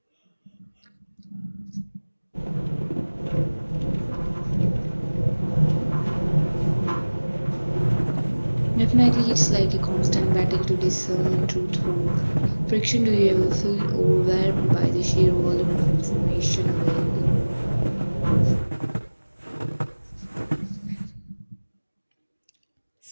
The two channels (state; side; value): inverted; both; correlation -1.00